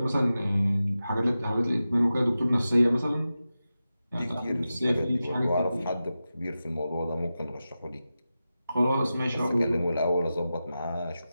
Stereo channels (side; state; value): both; inverted; correlation -0.93